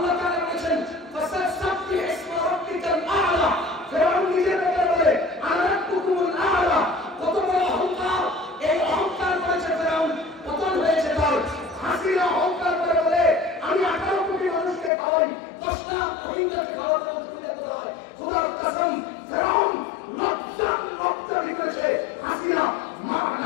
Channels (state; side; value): drops out; right; at 14.9 s